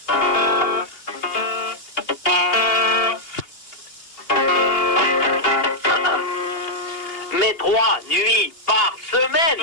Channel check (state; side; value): late; right; 2.8 ms